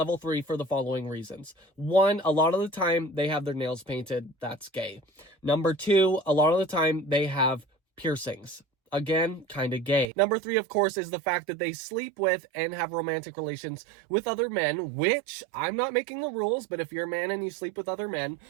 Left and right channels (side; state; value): left; drops out; at 10.1 s